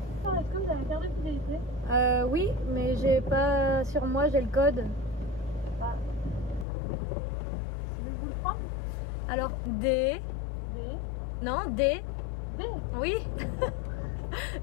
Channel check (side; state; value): right; drops out; at 6.7 s